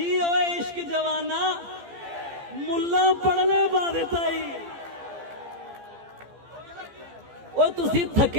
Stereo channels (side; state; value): left; late; 15 ms